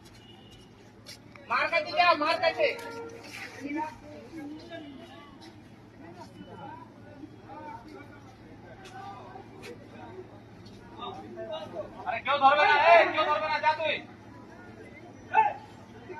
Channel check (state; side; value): identical; both; correlation 1.00